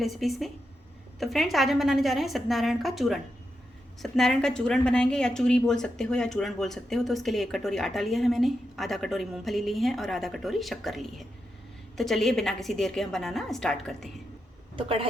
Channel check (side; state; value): both; normal; correlation 0.86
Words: में। तो फ्रेंड्स, आज हम बनाने जा रहे हैं सत्यनारायण का चूरण। सत्यनारायण का चूरण बनाएंगे, या चूरी बोल सकते हो या चूरण बोल सकते हो। तो उसके लिए 1 कटोरी आटा लिया है मैंने, आधा कटोरी मूंगफली ली है और आधा कटोरी शक्कर ली है। तो चलिए बिना किसी देर के हम बनाना स्टार्ट करते हैं। तो